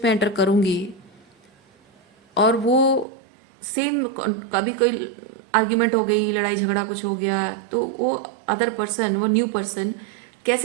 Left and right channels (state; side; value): drops out; left; at 3.1 s